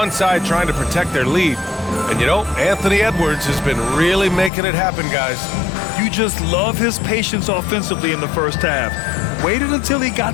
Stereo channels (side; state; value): right; drops out; at 4.5 s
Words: side trying to protect their lead. And you know, Anthony Edwards has been really making it happen, guys. You just love his patience offensively in the first half. Waited until he